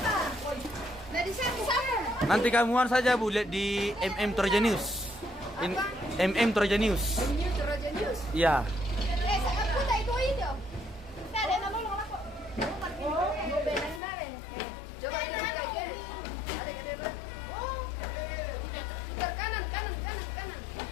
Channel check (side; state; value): right; drops out; at 14.0 s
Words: Nanti kamuan saja Bu, lihat di MM Toraja News. MM Toraja News. Iya.